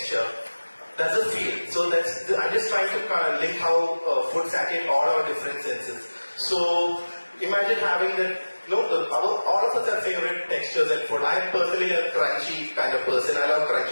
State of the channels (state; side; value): inverted; both; correlation -1.00